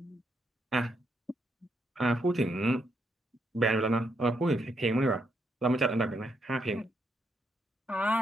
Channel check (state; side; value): normal; both; correlation 0.78